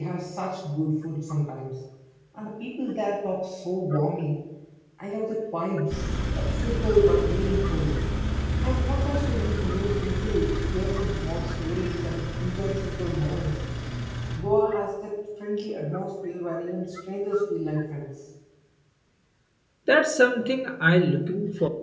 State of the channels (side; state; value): both; identical; correlation 1.00